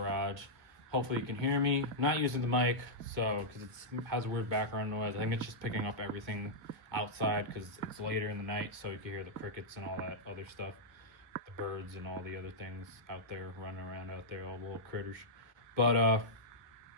Hopefully you can hear me. I'm not using the mic, because it has a weird background noise. I think it's just picking up everything outside because it's later in the night, so you can hear the crickets and all that other stuff. The birds and all the other things out there running around out there, all the little critters. But,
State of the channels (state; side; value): late; left; 2.2 ms